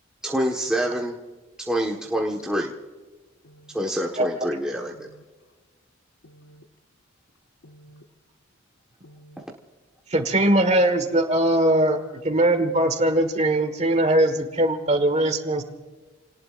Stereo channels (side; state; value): both; normal; correlation 0.43